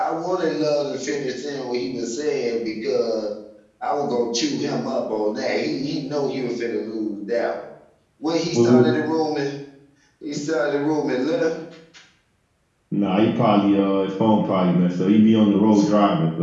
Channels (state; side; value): identical; both; correlation 1.00